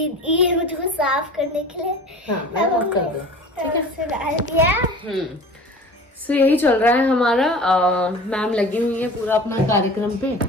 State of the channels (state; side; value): normal; both; correlation 0.40